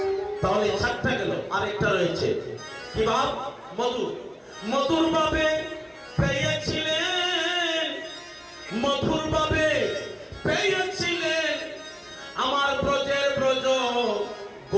তাহলে 4টা গেল। আরেকটা রয়েছে কি ভাব? মধুর। মধুর ভাবে পেয়েছিলেন, মধুর ভাবে পেয়েছিলেন আমার ব্রজের ব্রজ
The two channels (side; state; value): both; identical; correlation 1.00